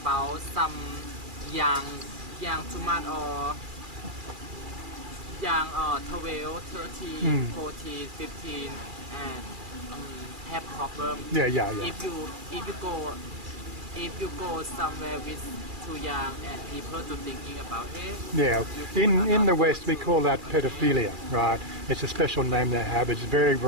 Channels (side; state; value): left; late; 2.3 ms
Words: some young too much or young 12, 13, 14, 15 and have problem. Yeah. If you go somewhere with too young and people to thinking about Yeah, in the West we call that pedophilia, right? It's a special name they have. It's very